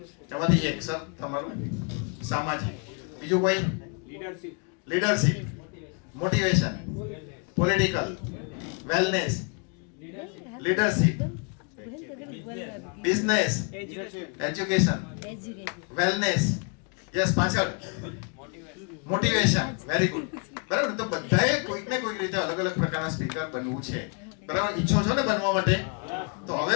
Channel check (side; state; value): right; quieter; 37.5 dB